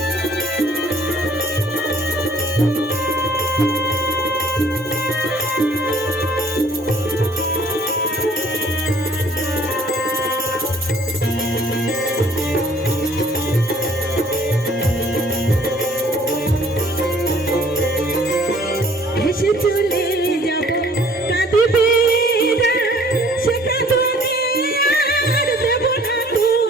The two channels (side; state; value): both; normal; correlation 0.56